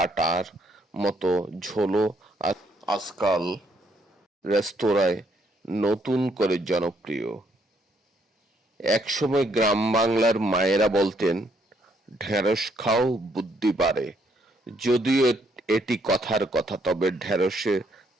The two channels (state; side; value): normal; both; correlation 0.70